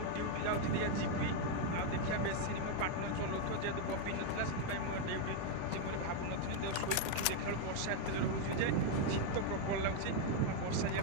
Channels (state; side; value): different; both; correlation 0.01